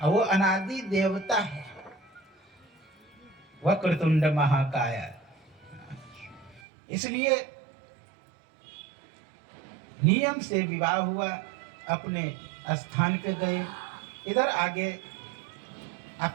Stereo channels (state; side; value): drops out; left; at 6.6 s